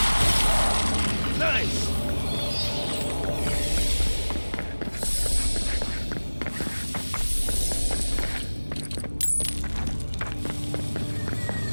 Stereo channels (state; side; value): inverted; both; correlation -1.00